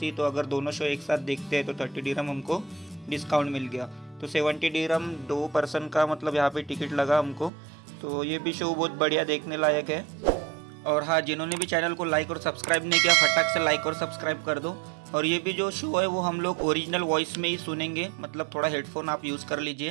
थी, तो अगर दोनों शो एक साथ देखते हैं तो 30 दिरहम हमको डिस्काउंट मिल गया। तो 70 दिरहम 2 पर्सन का मतलब यहाँ पे टिकट लगा हमको। तो ये भी शो बहुत बढ़िया देखने लायक है। और हाँ, जिन्होंने भी चैनल को लाइक और सब्सक्राइब नहीं किया फटाक से लाइक और सब्सक्राइब कर दो। और ये भी जो शो है वो हम लोग ओरिजिनल वॉइस में ही सुनेंगे, मतलब थोड़ा हेडफोन आप यूज़ कर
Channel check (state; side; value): drops out; left; at 7.5 s